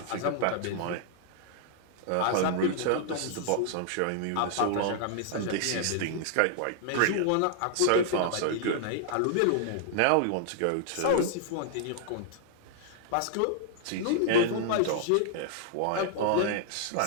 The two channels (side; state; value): both; different; correlation -0.01